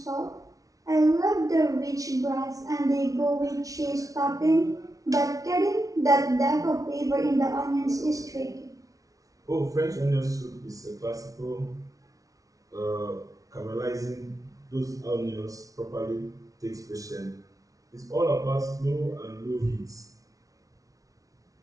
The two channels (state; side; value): late; left; 0.17 ms